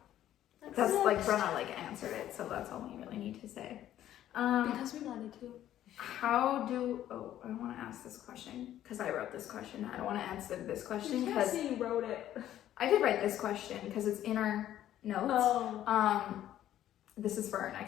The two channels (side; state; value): right; quieter; 12.2 dB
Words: That's like Brenna like answered it, so that's all we really need to say. Because we wanted to. I want to ask this question because I wrote this question. I don't want to answer this question because you wrote it. I did write this question because it's in our notes. Oh. This is for our